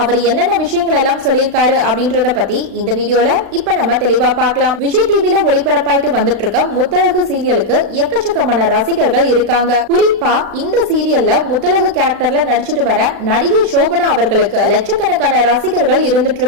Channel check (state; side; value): late; left; 36 ms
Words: அவர் என்னென்ன விஷயங்கள் எல்லாம் சொல்லியிருக்காரு அப்படின்றத பத்தி இந்த வீடியோல இப்ப நம்ம தெளிவா பார்க்கலாம். விஜய் டிவில ஒளிபரப்பாயிட்டு வந்துட்டு இருக்க முத்தழகு சீரியலுக்கு எக்கச்சக்கமான ரசிகர்கள் இருக்காங்க. குறிப்பா இந்த சீரியல்ல முத்தழகு கேரக்டர்ல நடிச்சிட்டு வர நடிகை சோபனா அவர்களுக்கு லட்சக்கணக்கான ரசிகர்கள் இருந்துட்டு